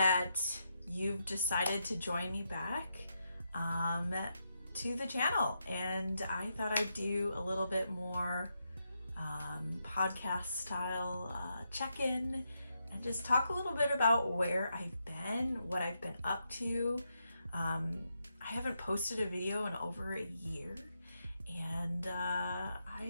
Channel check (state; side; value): inverted; both; correlation -0.82